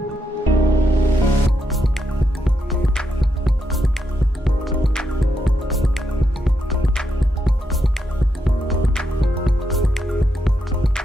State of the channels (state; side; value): normal; both; correlation 0.82